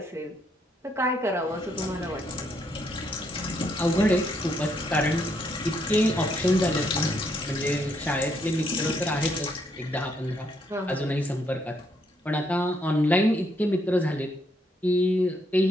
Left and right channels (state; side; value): normal; both; correlation 0.74